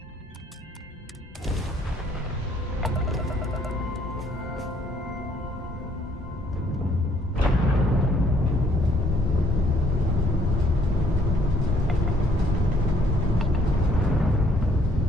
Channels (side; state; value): both; normal; correlation 0.64